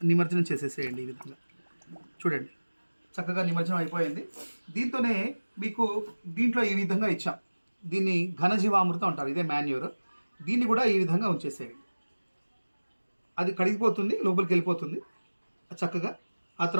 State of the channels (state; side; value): inverted; both; correlation -1.00